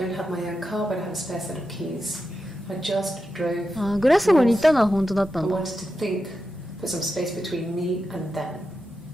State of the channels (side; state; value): both; normal; correlation 0.89